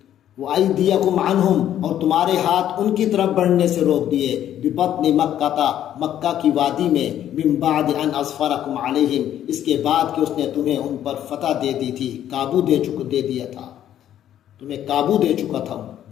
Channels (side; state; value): right; quieter; 11.1 dB